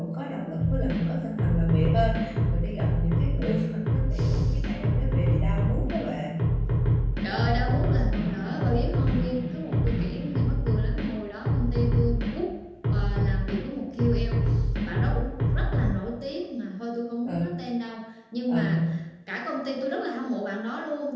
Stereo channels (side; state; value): both; identical; correlation 1.00